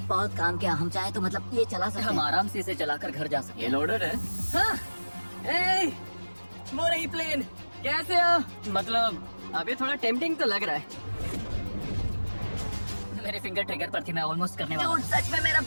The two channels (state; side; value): inverted; both; correlation -1.00